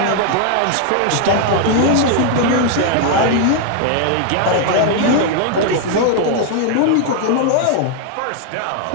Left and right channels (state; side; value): different; both; correlation 0.00